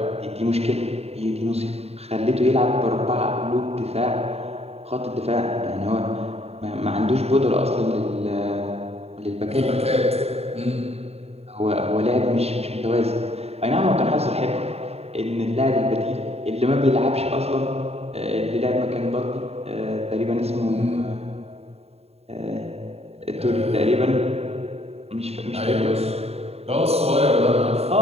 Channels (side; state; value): left; late; 0.30 ms